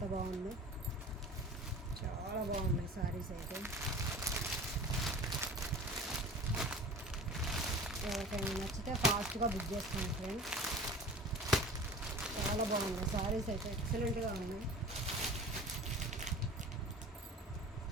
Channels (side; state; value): both; normal; correlation 0.40